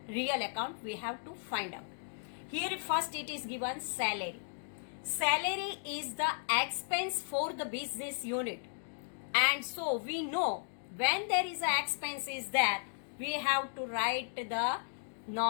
real account, we have to find out. Here first it is given salary. Salary is the expense for the business unit, and so we know when there is an expense is there, we have to write the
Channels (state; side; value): silent; right; digital silence